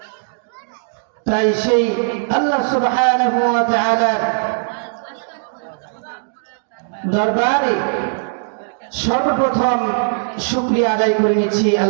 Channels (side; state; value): left; silent; digital silence